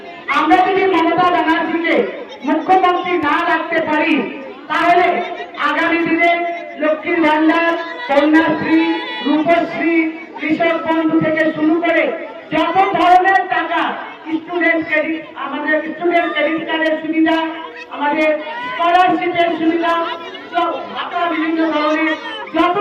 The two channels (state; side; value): identical; both; correlation 1.00